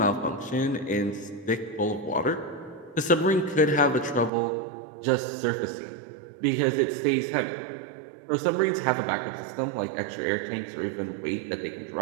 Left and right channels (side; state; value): left; drops out; at 4.3 s